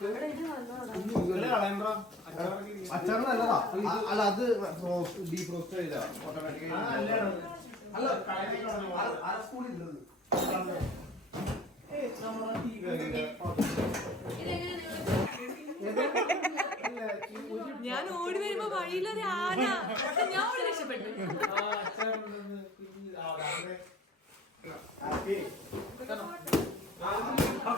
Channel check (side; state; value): both; normal; correlation 0.46